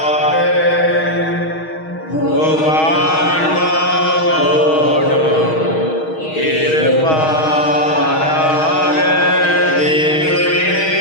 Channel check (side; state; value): right; late; 6.3 ms